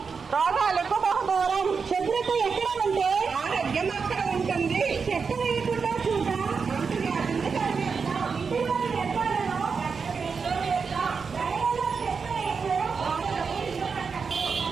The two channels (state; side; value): quieter; left; 5.4 dB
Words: రోగాలకు బహుదూరం. శుభ్రత ఎక్కడ ఉంటే ఆరోగ్యం అక్కడ ఉంటుంది. చెత్త వేయకుండా చూద్దాం.